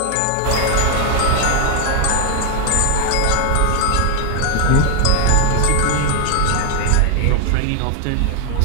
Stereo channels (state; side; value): different; both; correlation 0.01